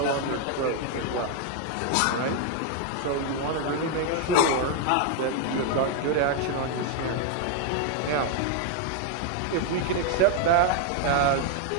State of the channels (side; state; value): both; different; correlation 0.00